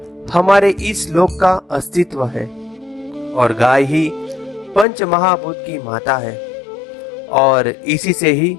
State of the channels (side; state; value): right; drops out; at 4.9 s